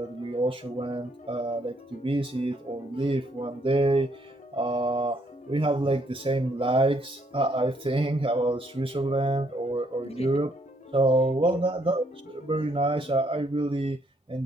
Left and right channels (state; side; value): normal; both; correlation 0.70